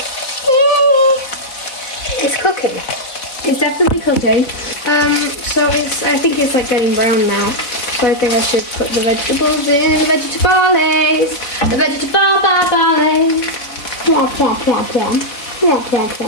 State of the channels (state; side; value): late; right; 4.0 ms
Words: It's cooking. It's definitely cooking. So I think it's like getting brown now. So I think I should put the vegetables in. The vegetables. The vegetables. Plum, plum, plum, plum. Plum, plum,